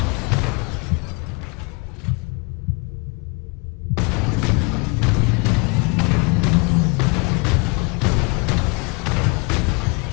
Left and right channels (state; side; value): quieter; right; 30.7 dB